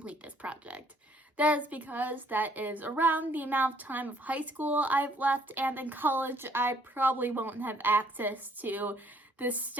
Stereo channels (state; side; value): normal; both; correlation 0.62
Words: this project. That is because that is around the amount of time of high school I've left, and in college I probably won't have access to the